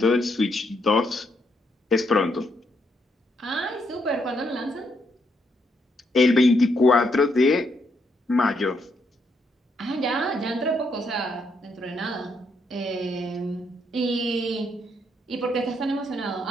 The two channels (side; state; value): both; normal; correlation 0.76